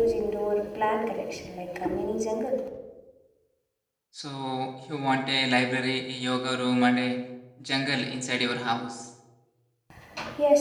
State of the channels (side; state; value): both; identical; correlation 1.00